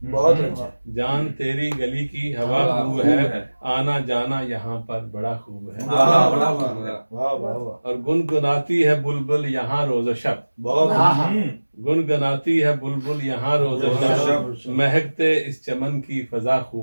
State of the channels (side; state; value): both; inverted; correlation -1.00